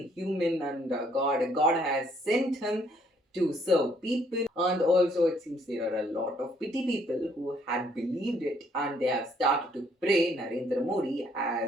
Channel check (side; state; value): both; normal; correlation 0.66